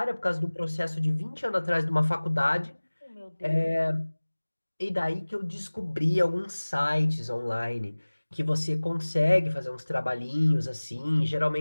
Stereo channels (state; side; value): inverted; both; correlation -1.00